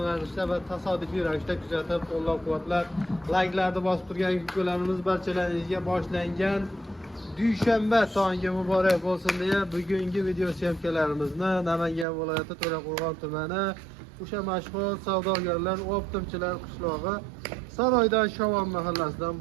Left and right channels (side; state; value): left; drops out; at 12.1 s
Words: ravishda va tasodifiy ravishda kuzatib, qo'llab-quvvatlab, like'larni bosib turgan videolarimiz barchalaringizga boshlangan dushanba tongi muborak bo'lsin deya bugungi video syomkalarimizni Namangan viloyati To'raqo'rg'on tumani o'sha mashhur savdogarlar, optimchilar qishlog'i Saroydan Shavon mahallasidan